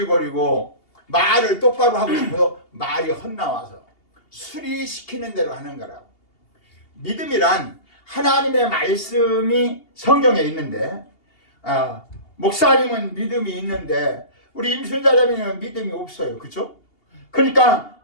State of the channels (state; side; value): late; right; 2.8 ms